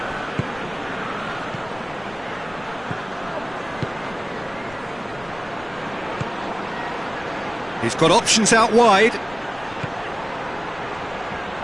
He's got options out wide. He's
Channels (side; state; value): left; noise; rumble, 21 dB below the sound